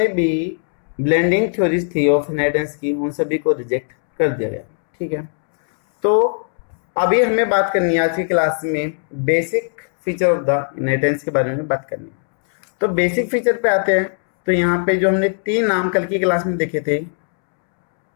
भी ब्लेंडिंग थ्योरीज थी ऑफ इनहेरिटेंस की, उन सभी को रिजेक्ट कर दिया गया। ठीक है, तो अभी हमें बात करनी है आज की क्लास में basic feature of the inheritance के बारे में बात करनी है। तो बेसिक फीचर पे आते हैं। तो यहाँ पे जो हमने 3 नाम कल की क्लास में देखे थे,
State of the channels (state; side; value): silent; right; 67 dB below the other